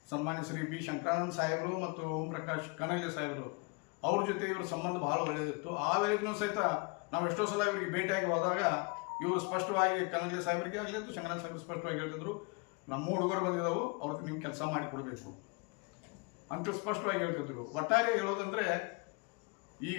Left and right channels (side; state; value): right; quieter; 30.9 dB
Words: ಸನ್ಮಾನ್ಯ ಶ್ರೀ ಬಿ. ಶಂಕರಾನಂದ ಸಾಹೇಬರು ಮತ್ತು ಓಂ ಪ್ರಕಾಶ್ ಕಣಲೆ ಸಾಹೇಬರು ಅವ್ರ ಜೊತೆ ಇವ್ರ ಸಂಬಂಧ ಭಾಳ ಒಳ್ಳೆಯದಿತ್ತು. ಆ ವೇಳೆಗೂ ಸಹಿತ ನಾವು ಎಷ್ಟೋ ಸಲ ಇವರಿಗೆ ಭೇಟಿಯಾಗಿ ಹೋದಾಗ ಇವರು ಸ್ಪಷ್ಟವಾಗಿ ಕನಗಲಿ ಸಾಹೇಬರಿಗೆ ಆಗಲಿ ಅಥವಾ ಶಂಕರನಾಥ ಸಾಹೇಬರು ಸ್ಪಷ್ಟವಾಗಿ ಹೇಳ್ತಿದ್ರು, ನಮ್ಮ ಹುಡುಗರು ಬಂದಿದ್ದಾವೆ, ಅವ್ರಿಗೆ ನೀವು ಕೆಲಸ ಮಾಡಿ ಕೊಡಬೇಕು ಅಂತ ಸ್ಪಷ್ಟವಾಗಿ ಹೇಳ್ತಿದ್ರು. ಒಟ್ಟಾರೆ ಹೇಳೋದಂದ್ರೆ